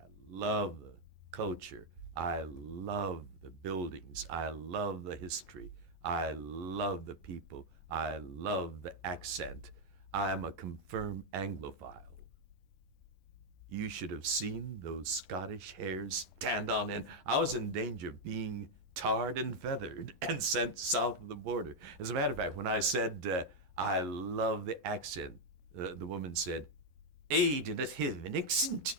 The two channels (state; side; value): late; left; 11 ms